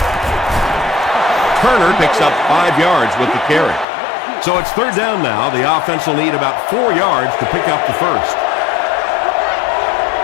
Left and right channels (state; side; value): drops out; right; at 3.9 s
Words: Turner picks up 5 yards with the carry. So it's third down now. The offense will need about 4 yards to pick up the first.